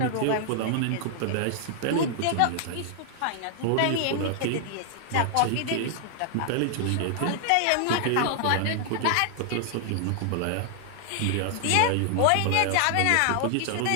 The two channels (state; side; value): different; both; correlation 0.00